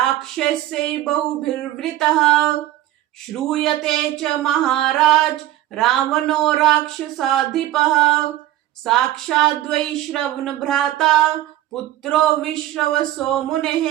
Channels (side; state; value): left; quieter; 14.4 dB